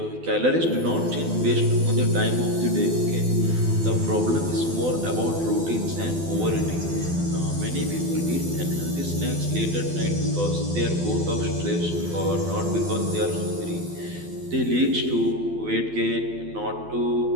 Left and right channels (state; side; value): late; left; 12 ms